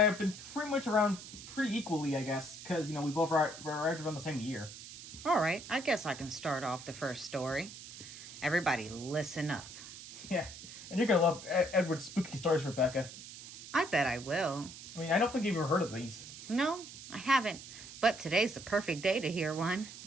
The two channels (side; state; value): right; noise; hiss, 14 dB below the sound